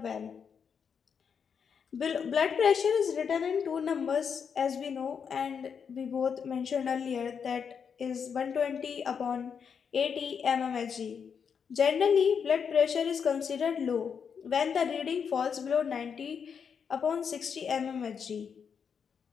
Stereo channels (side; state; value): right; quieter; 6.8 dB